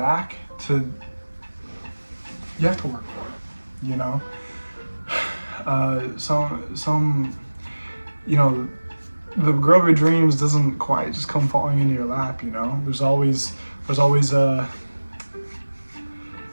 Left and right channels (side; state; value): both; inverted; correlation -1.00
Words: you have to work for it, you know. Some, you know, the girl of your dreams doesn't quite just come falling into your lap, you know. There's always a